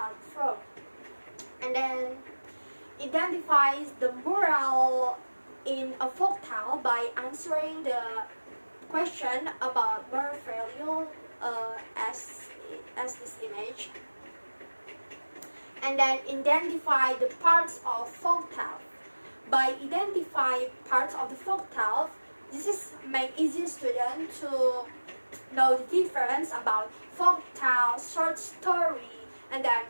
from, and then identifies the moral in a folk tale by answering the question about moral value as this image, and then identify the parts of folk tale. By identifying parts of the folk tale, this is make easy student to know the difference about folk tale, short story, and then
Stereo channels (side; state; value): both; inverted; correlation -1.00